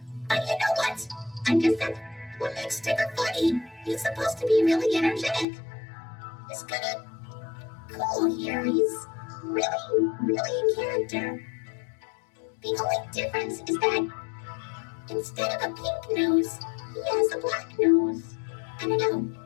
But you know what? I guess that's what makes Tigger funny. He's supposed to be really energetic. He's kinda cool here. He's really in character. The only difference is that instead of a pink nose, he has a black nose. I don't know,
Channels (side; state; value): right; drops out; at 5.5 s